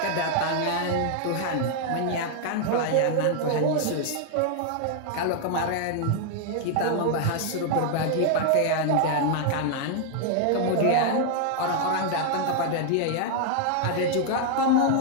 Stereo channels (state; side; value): different; both; correlation 0.00